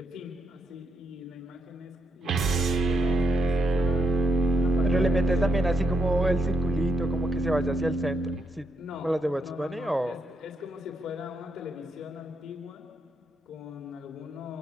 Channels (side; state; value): both; normal; correlation 0.79